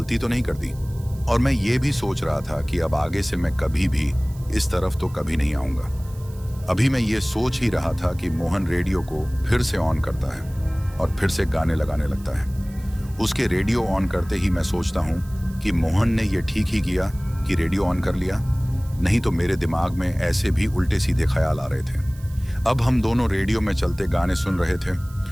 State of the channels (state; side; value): noise; right; hiss, 24 dB below the sound